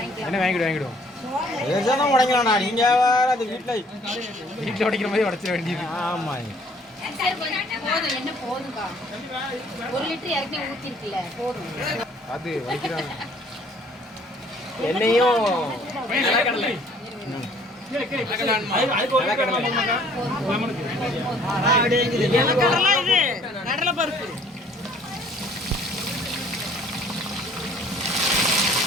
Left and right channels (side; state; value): both; normal; correlation 0.58